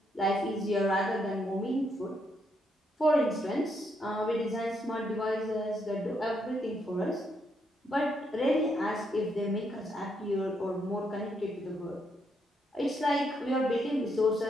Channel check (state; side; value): normal; both; correlation 0.76